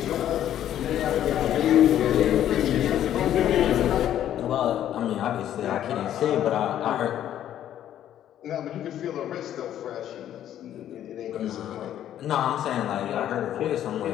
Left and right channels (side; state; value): right; quieter; 11.2 dB